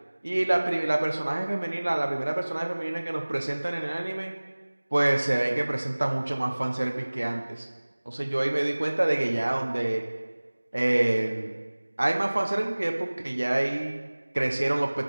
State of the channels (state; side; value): inverted; both; correlation -1.00